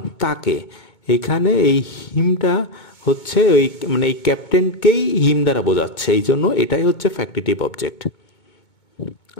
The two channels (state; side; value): late; right; 2.2 ms